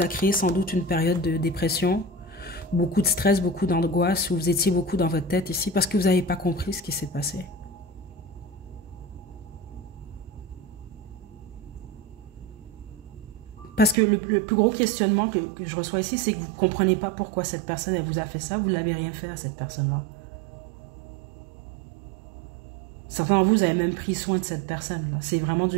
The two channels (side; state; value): left; drops out; at 14.0 s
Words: a créé sans doute une période de dépression. beaucoup de stress, beaucoup d'angoisse, ou vous étiez beaucoup dans votre tête ici parce que vous n'avez pas compris ce qui s'est passé. Parce que le plus gros questionnement que je reçois ici, c'est que vous ne comprenez pas pourquoi cette personne, elle vous a fait ça. Vous ne l'avez rien fait à cette personne-là. Certains d'entre vous, vous avez même pris soin de cette personne-là. C'est vraiment